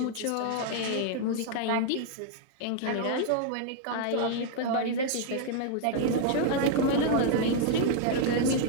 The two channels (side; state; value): both; different; correlation 0.00